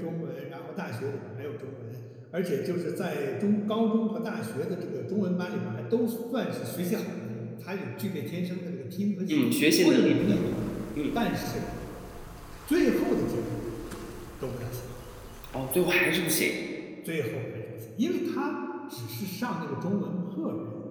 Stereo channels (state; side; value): identical; both; correlation 1.00